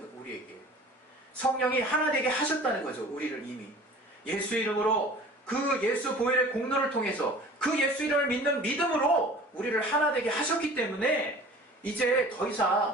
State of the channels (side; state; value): both; normal; correlation 0.44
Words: 우리에게 성령이 하나 되게 하셨다는 거죠. 우리를 이미 예수 이름으로, 그 예수 보혈의 공로를 통해서 그 예수 이름을 믿는 믿음으로 우리를 하나 되게 하셨기 때문에 이제 더